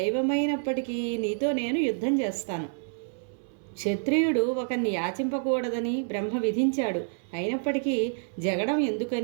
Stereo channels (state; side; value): silent; left; 59 dB below the other